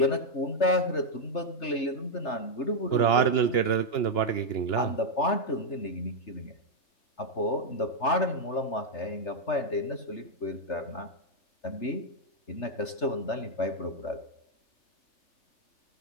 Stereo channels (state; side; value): late; right; 3.3 ms